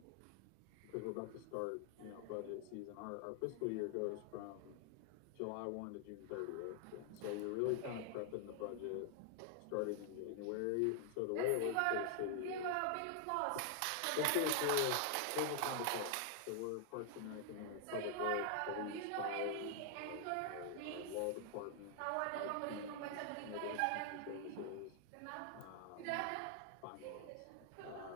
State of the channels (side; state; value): both; different; correlation 0.00